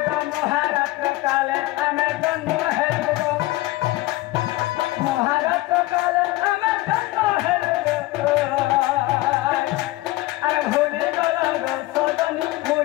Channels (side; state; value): right; quieter; 18.6 dB